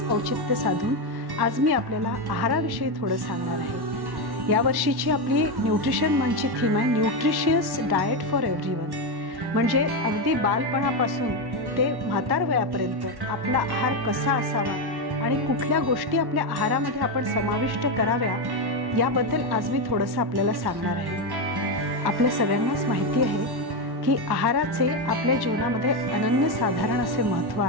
औचित्य साधून आज मी आपल्याला आहाराविषयी थोडं सांगणार आहे। या वर्षीची आपली न्यूट्रिशन मंथची थीम आहे न्यूट्रिशियस डाएट फॉर एव्हरीवन। म्हणजे अगदी बालपणापासून ते म्हातार वयापर्यंत आपला आहार कसा असावा आणि कुठल्या गोष्टी आपल्या आहारामध्ये आपण समाविष्ट कराव्या याबद्दल आज मी थोडंसं आपल्याला सांगणार आहे। आपल्या सगळ्यांनाच माहिती आहे की आहाराचे आपल्या जीवनामध्ये अनन्यसाधारण असे महत्त्व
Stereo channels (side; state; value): left; late; 1.1 ms